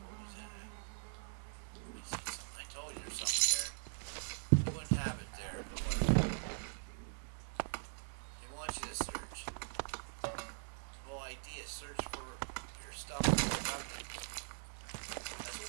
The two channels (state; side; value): silent; left; digital silence